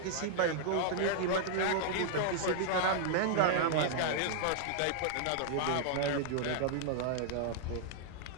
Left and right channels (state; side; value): different; both; correlation -0.01